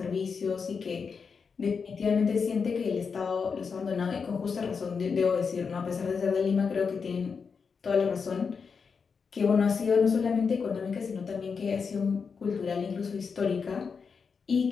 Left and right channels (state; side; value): quieter; right; 5.6 dB